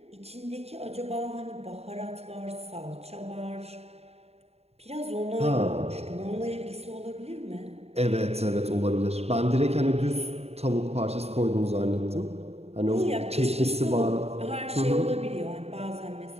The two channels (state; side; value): late; left; 0.30 ms